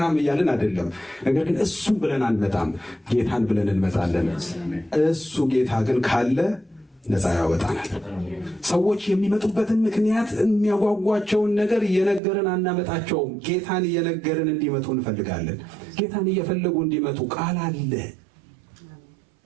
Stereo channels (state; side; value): drops out; left; at 12.2 s